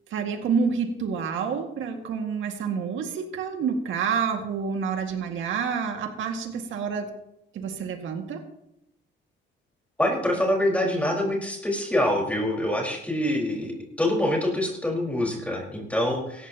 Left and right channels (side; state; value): both; normal; correlation 0.56